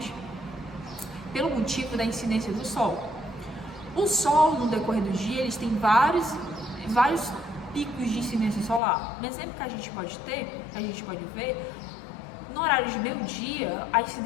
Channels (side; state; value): right; drops out; at 8.8 s